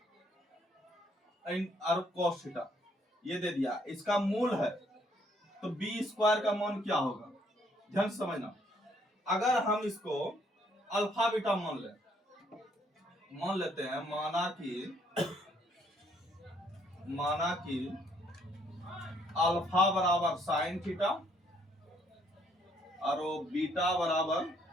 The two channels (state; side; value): normal; both; correlation 0.67